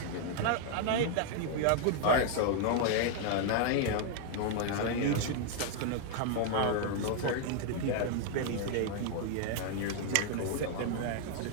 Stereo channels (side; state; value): both; different; correlation 0.00